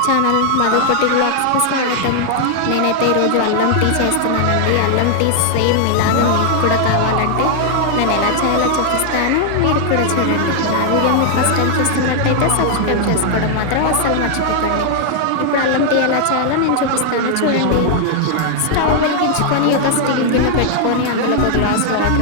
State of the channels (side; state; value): both; different; correlation 0.00